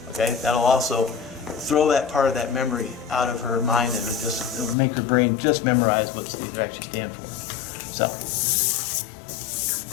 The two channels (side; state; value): right; drops out; at 4.8 s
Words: Okay, that'll also throw that part of that memory out of her mind, and it'll make her brain just memorize what these actually stand for. So.